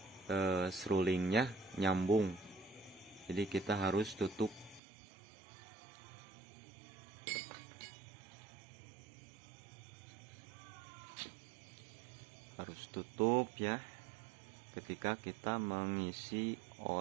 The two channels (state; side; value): drops out; left; at 4.8 s